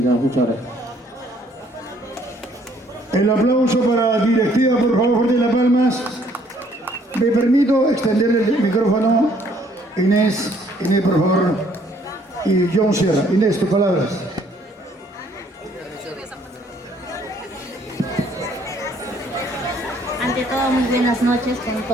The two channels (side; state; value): both; normal; correlation 0.63